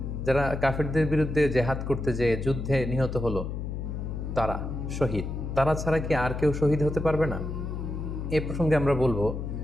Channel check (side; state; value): left; noise; hum, 5 dB below the sound